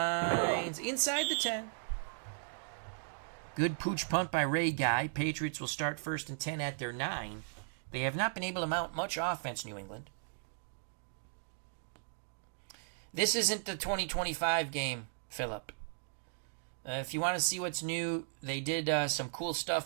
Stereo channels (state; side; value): silent; left; digital silence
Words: Inside the 10. Good pooch punt by Ray Guy. Patriots will start 1st and 10 at their 9. They have not been able to mount much offense, New England. This isn't the 2025 game, Philip. If you want to see what's new, they did some cool